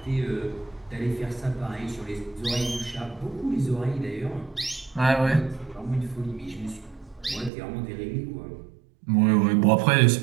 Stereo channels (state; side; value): drops out; left; at 7.5 s